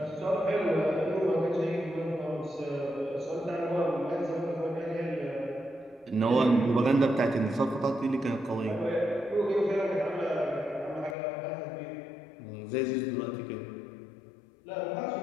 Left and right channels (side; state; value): right; drops out; at 11.2 s